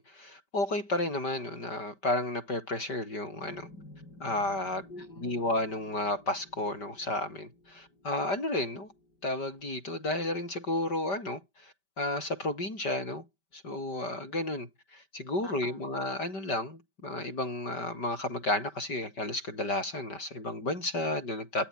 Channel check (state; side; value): late; right; 5.2 ms